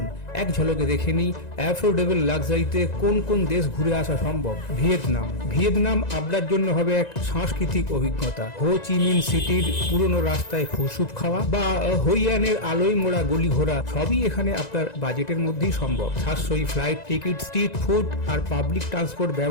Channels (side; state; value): right; late; 1.9 ms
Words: এক ঝলকে দেখে নিই অ্যাফোর্ডেবল লাক্সারিতে কোন কোন দেশ ঘুরে আসা সম্ভব। ভিয়েতনাম আপনার জন্য হবে এক সাংস্কৃতিক অভিজ্ঞতা। হো চি মিন সিটির পুরনো রাস্তায় ফুসুপ খাওয়া বা হইয়ানের আলোয় মোড়া গলি ঘোরা সবই এখানে আপনার বাজেটের মধ্যেই সম্ভব। সাশ্রয়ী ফ্লাইট টিকিট, স্ট্রিট ফুড আর পাবলিক ট্রান্সপোর্ট